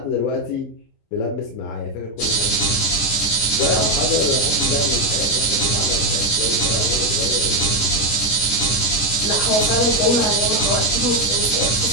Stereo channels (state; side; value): late; right; 26 ms